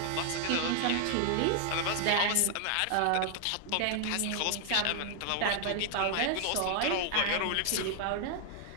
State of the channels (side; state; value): both; different; correlation 0.00